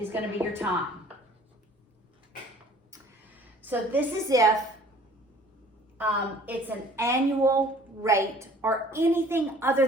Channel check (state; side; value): normal; both; correlation 0.51